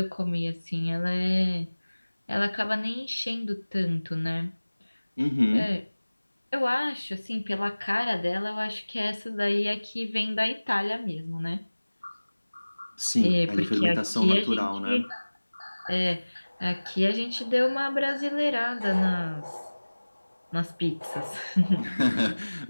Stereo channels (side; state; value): both; inverted; correlation -1.00